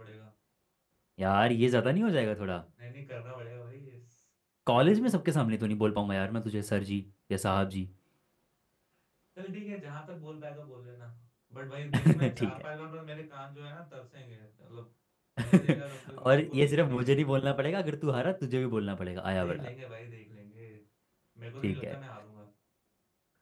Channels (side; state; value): both; identical; correlation 1.00